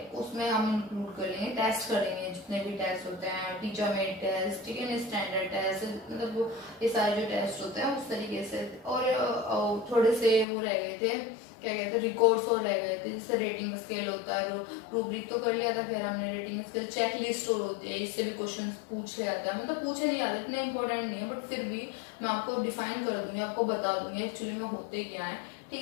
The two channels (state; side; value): drops out; right; at 10.5 s